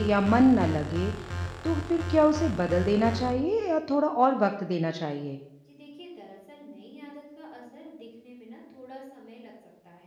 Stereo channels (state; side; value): identical; both; correlation 1.00